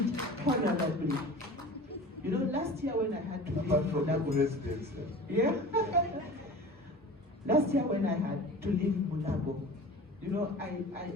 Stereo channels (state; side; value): normal; both; correlation 0.38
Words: honorably. Last year when I had to leave Mulabo residence. Yeah. Last year when I had to leave Mulabo,